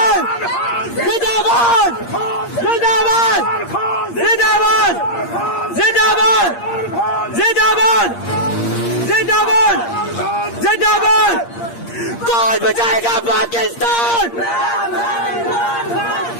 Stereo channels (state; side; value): late; right; 8.6 ms